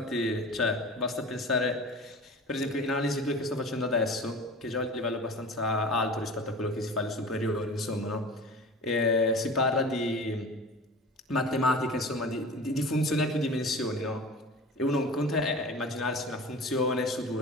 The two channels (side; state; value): both; normal; correlation 0.36